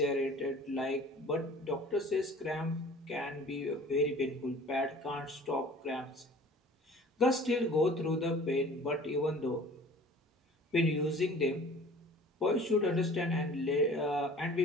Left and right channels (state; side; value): normal; both; correlation 0.46